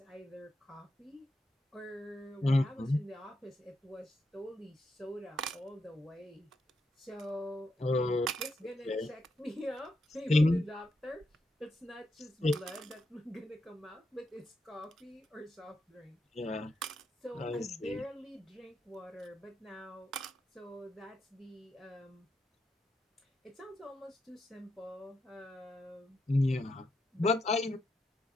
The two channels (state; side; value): normal; both; correlation 0.83